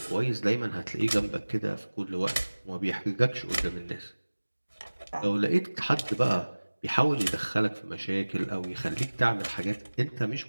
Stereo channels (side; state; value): both; inverted; correlation -1.00